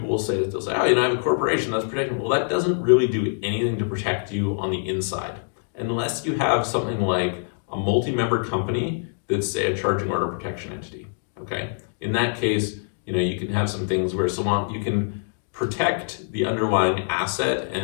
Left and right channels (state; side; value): silent; right; digital silence